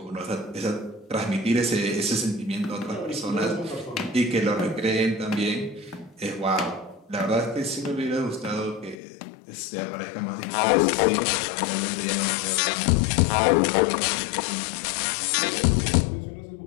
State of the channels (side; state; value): right; drops out; at 9.0 s